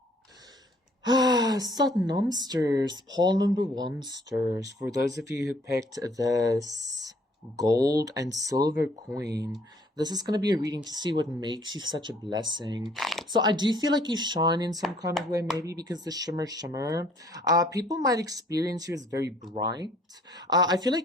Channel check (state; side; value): normal; both; correlation 0.60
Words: Satnam stirs, pile number 1 stirs. For those of you who picked this gold and silver coin, this is going to be a reading to see what makes you such a blessing. So I do feel like you shine in some kind of way, maybe because the shimmer. People might experience you as very bright. I feel